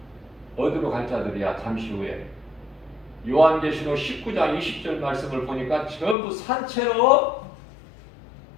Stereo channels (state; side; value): drops out; right; at 6.2 s